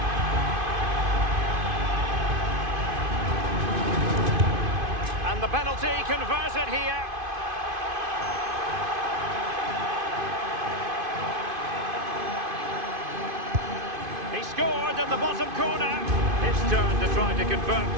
And the penalty converted here. He scored in the bottom corner. His turn to try to convert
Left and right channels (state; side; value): late; left; 2.5 ms